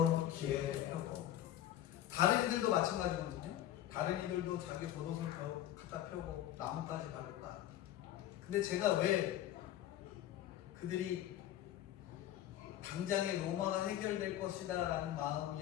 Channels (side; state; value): right; quieter; 12.3 dB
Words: 길에 펴고. 다른 이들도 마찬가지거든요. 다른 이들도 자기 겉옷을 갖다 펴고 나뭇가지 바르다. 근데 제가 왜 그들이 당장에 로마가 해결될 것이다 라는